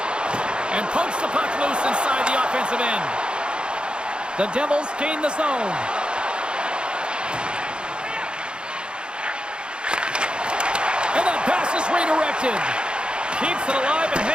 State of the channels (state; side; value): late; left; 0.053 ms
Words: And pokes the puck loose inside the offensive end. The Devils gain the zone. And that pass is redirected. Keeps it alive and